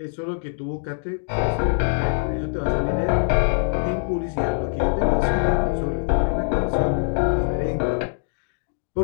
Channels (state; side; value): silent; right; digital silence